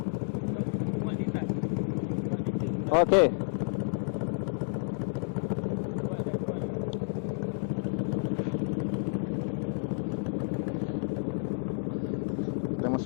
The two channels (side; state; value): right; silent; digital silence